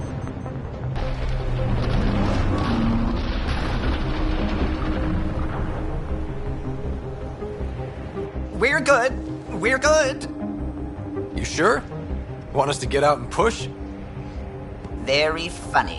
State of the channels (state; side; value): identical; both; correlation 1.00